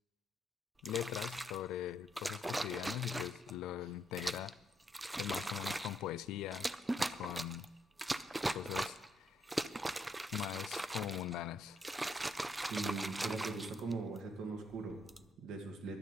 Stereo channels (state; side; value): normal; both; correlation 0.75